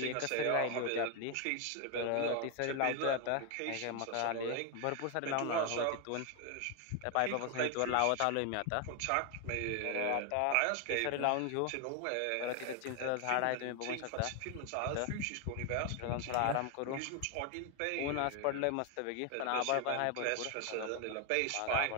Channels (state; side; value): different; both; correlation 0.01